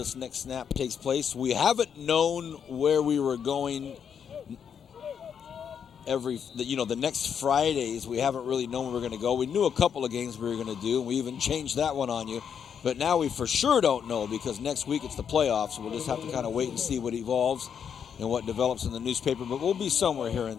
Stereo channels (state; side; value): quieter; right; 7.7 dB